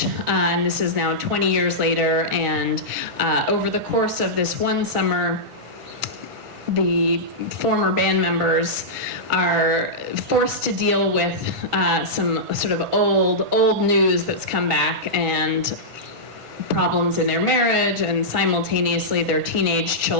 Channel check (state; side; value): late; left; 1.5 ms